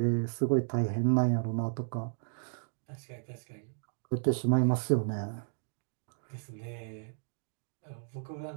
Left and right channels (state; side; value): silent; left; digital silence